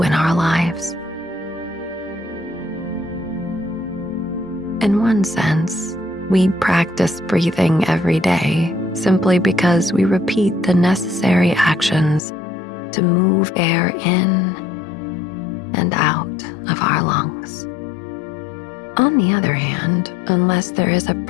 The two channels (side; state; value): right; drops out; at 12.2 s